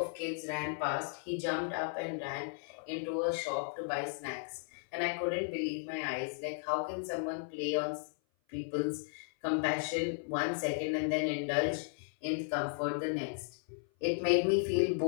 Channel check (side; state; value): right; silent; 54 dB below the other